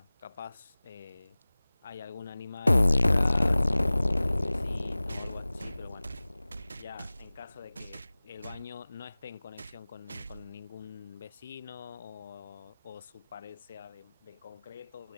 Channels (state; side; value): inverted; both; correlation -0.99